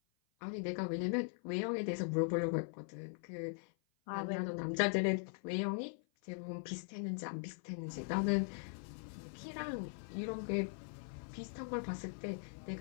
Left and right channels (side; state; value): right; silent; 51 dB below the other